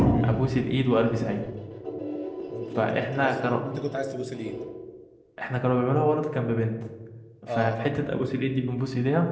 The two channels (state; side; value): identical; both; correlation 1.00